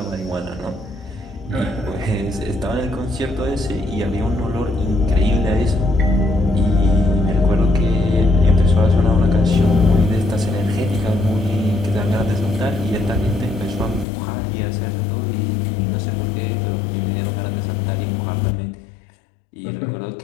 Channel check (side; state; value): right; drops out; at 14.1 s